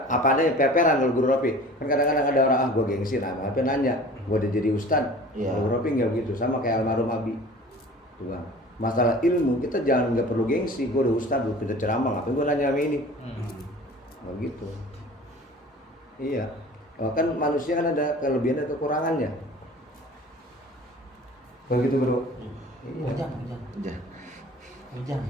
apa adanya peperan kalau Guru Ropi. Kan kadang-kadang ada orang gue gengsi, nah apa nanya, gue udah jadi ustad. Iya. Guru Ropi nggak begitu, sama kayak almarhum Abi. Tuh, Bang. Masalah ilmu kita jangan nggak perlu gengsi. Gue udah ustad, gue pintar ceramah, ngapain gue nanya sama ini? Nggak gitu. Iya. Oh, kan manusia kan ada kelebihan dan kekurangannya. Begitu Bro. Iya. Bujang. Udah. Bujang.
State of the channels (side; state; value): both; normal; correlation 0.43